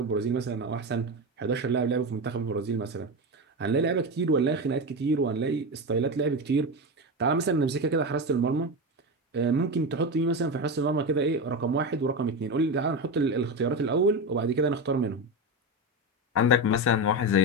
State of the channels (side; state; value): both; normal; correlation 0.17